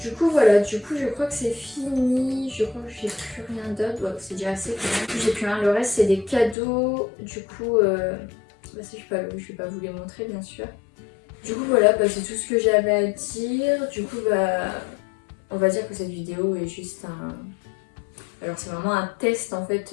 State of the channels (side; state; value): right; drops out; at 6.6 s